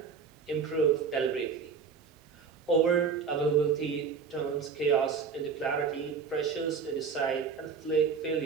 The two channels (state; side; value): quieter; left; 5.7 dB